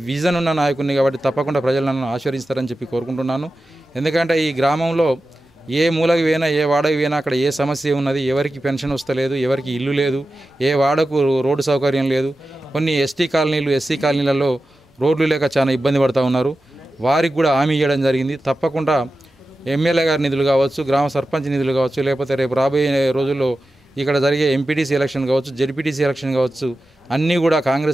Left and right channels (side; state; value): both; normal; correlation 0.93